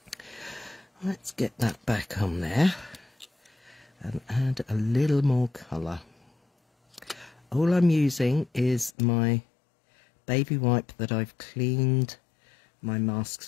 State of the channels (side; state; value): right; drops out; at 9.0 s